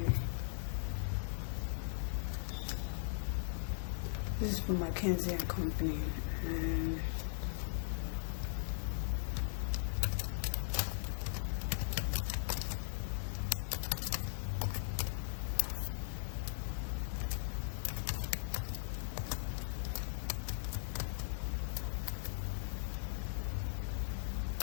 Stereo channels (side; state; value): right; silent; 52 dB below the other